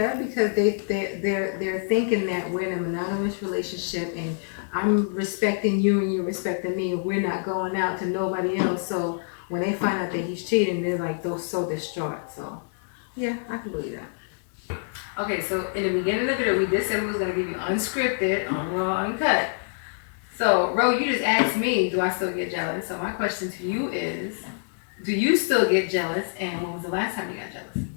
because they're thinking that we're in a monogamous relationship and I'm respecting you and you're respecting me, and we're not going out to nobody else. So when they find out that he's cheating, they're like, they're so distraught. So yeah, I can believe that. Okay, so in the beginning of the video, we did say we was gonna give you unscripted, raw, uncut. So Ro, you just asked me, do I still get jealous? So my question to you is, do you still get jealous, and when was the last time you got jealous?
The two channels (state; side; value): silent; right; digital silence